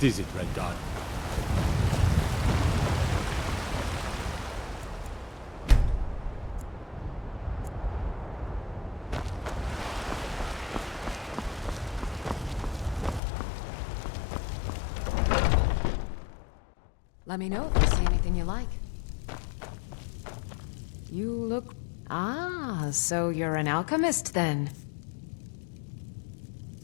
is it, Red Dot? Let me know if you see anything you like. You look... Ah, so you're an alchemist then.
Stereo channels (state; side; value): drops out; right; at 13.2 s